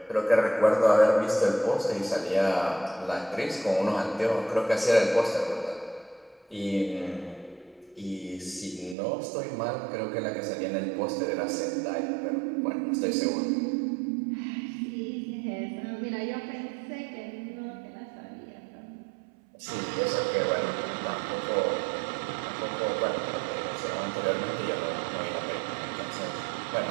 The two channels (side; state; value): left; drops out; at 9.0 s